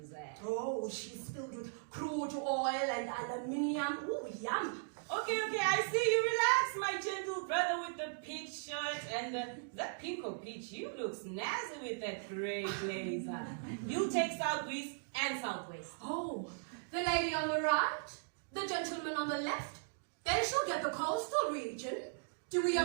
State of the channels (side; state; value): left; silent; digital silence